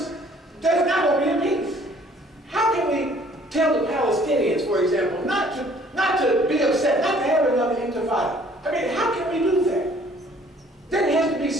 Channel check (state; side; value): normal; both; correlation 0.57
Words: there's not going to be a peace. How can we tell the Palestinians, for example, not to be upset, not to have another intifada? I mean, how can we do that? There has to be